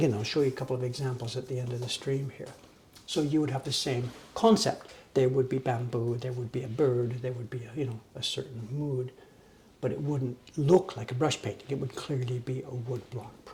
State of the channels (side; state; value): both; identical; correlation 1.00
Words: I'll show you a couple of examples at the end of the stream here. So you would have the same concept. There would be bamboo, there would be a bird, there would be a certain mood, but it wouldn't look like a brush painting. It would clearly be a woodblock